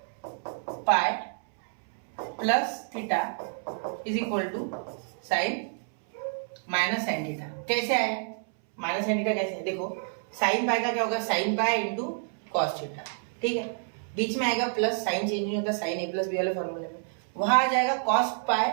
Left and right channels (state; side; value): silent; left; 59 dB below the other